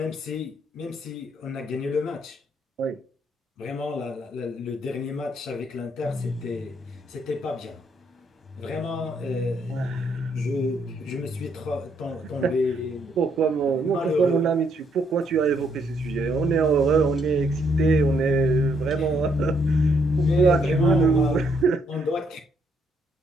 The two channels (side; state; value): both; normal; correlation 0.72